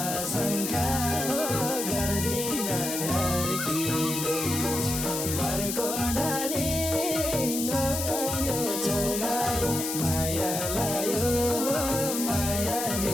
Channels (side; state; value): left; noise; hiss, 3 dB below the sound